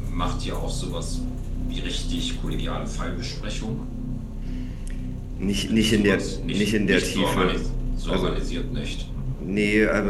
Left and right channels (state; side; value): identical; both; correlation 1.00